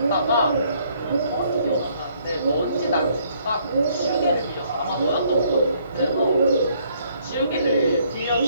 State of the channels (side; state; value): both; inverted; correlation -0.66